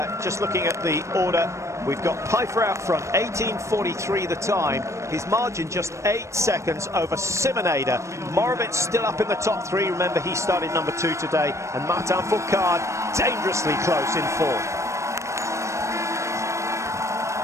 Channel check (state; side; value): late; left; 0.14 ms